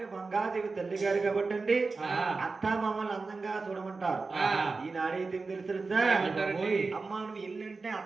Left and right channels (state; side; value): quieter; left; 4.0 dB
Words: మంగాదేవి తల్లి గారు కాబట్టి అత్త మామలు అందంగా చూడమంటారు ఈనాడైతే తెలుసా అమ్మ నువ్వు ఇల్లంటే